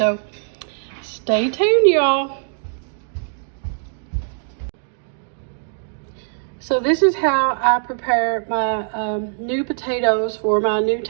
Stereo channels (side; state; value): left; silent; digital silence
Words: stay tuned, y'all. So this is how I prepare my new potatoes for my new